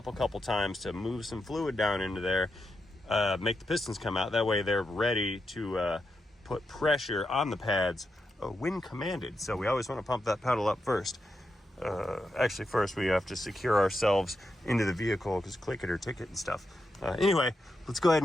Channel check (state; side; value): normal; both; correlation 0.86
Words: a couple times to move some fluid down into there, make the pistons come out. That way they're ready to put pressure on the pads when commanded. So we always want to pump that pedal up first. Actually, first we have to secure ourselves into the vehicle, because click it or ticket and stuff. Anyway, let's go ahead